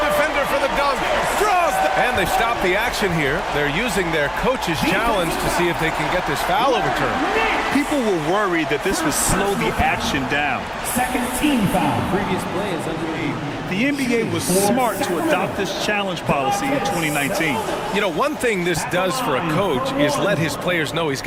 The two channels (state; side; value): identical; both; correlation 1.00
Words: defender for the dunk. Draws the... And they stop the action here. They're using their coach's challenge to see if they can get this foul overturned. People were worried that this would slow the action down. Second team foul. Previous play is underway. The NBA was smart to adopt this challenge policy in 2019. You know, one thing this does for a coach is let his players know he's